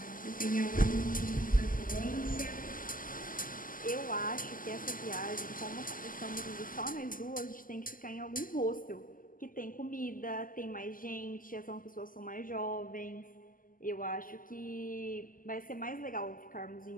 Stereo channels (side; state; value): right; late; 0.41 ms